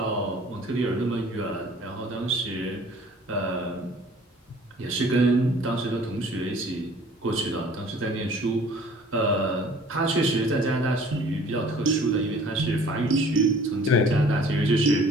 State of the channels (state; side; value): normal; both; correlation 0.52